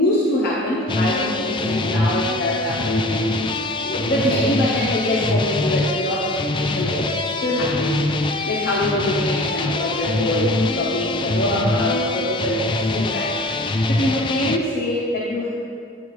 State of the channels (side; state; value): both; normal; correlation 0.42